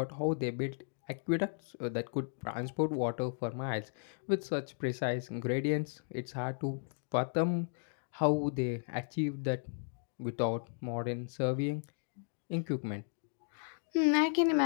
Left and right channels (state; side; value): silent; right; digital silence